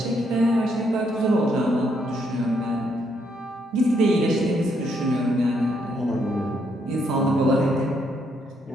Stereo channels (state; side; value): normal; both; correlation 0.74